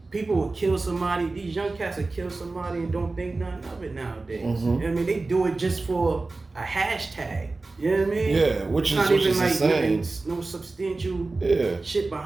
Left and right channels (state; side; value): quieter; left; 3.4 dB